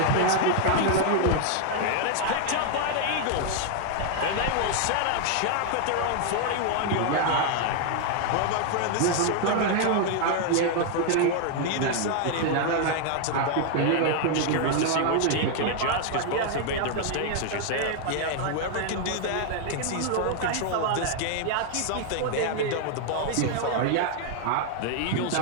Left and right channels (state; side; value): different; both; correlation 0.00